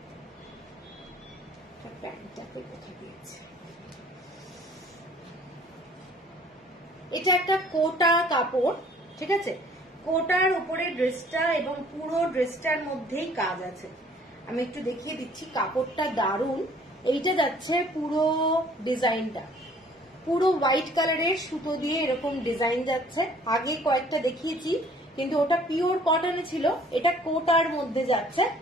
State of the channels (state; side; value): normal; both; correlation 0.56